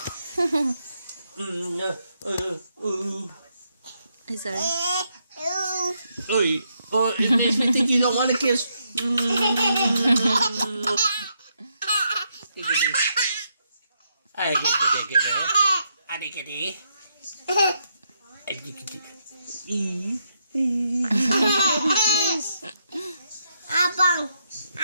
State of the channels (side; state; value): both; inverted; correlation -0.78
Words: sorry. Oh, it makes me think you don't want a kiss. Abang.